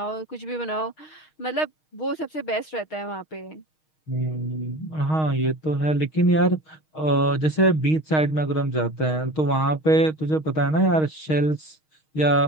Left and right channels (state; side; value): late; right; 6.4 ms